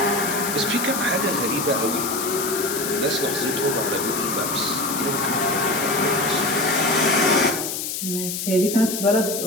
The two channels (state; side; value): noise; left; hiss, 4 dB below the sound